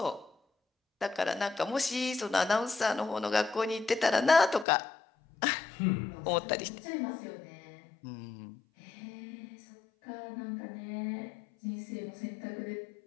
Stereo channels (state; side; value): drops out; right; at 4.7 s